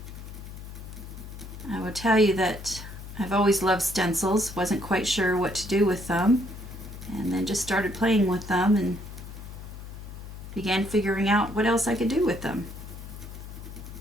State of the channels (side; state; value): left; noise; hum, 12 dB below the sound